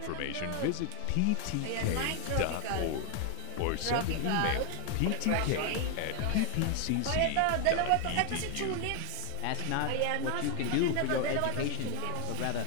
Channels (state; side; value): different; both; correlation 0.00